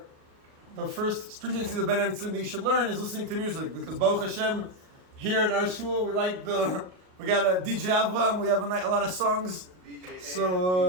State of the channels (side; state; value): left; late; 38 ms